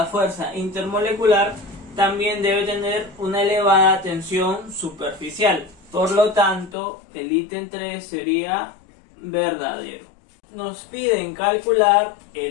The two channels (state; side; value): drops out; right; at 6.8 s